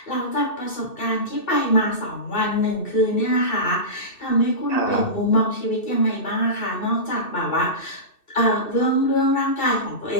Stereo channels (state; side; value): late; right; 2.6 ms